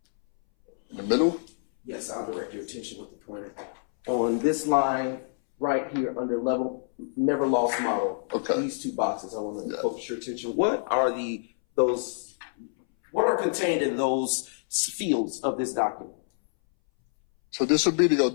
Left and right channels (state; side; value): silent; right; 60 dB below the other